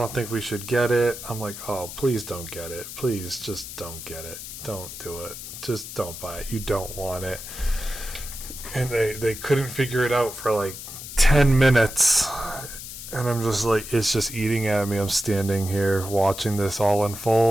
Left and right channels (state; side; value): noise; left; hiss, 11 dB below the sound